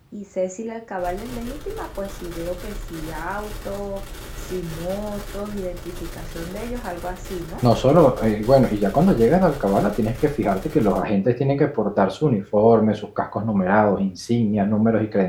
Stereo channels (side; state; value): both; identical; correlation 1.00